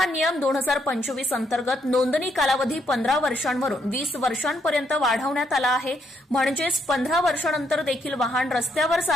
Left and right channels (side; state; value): both; normal; correlation 0.74